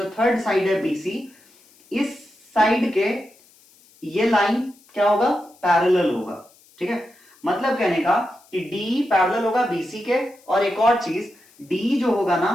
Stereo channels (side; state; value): left; noise; hiss, 29 dB below the sound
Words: थर्ड साइड है बीसी, इस साइड के ये लाइन क्या होगा, पैरेलल होगा, ठीक है। मतलब कहने का कि डी पैरेलल होगा बीसी के, और एक और चीज, डी जो होगा ना